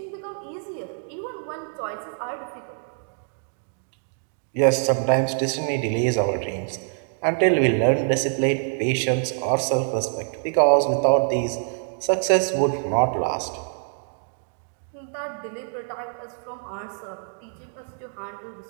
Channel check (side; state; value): left; silent; digital silence